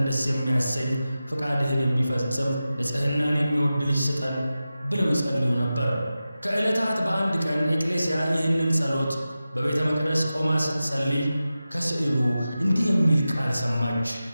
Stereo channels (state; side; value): inverted; both; correlation -0.94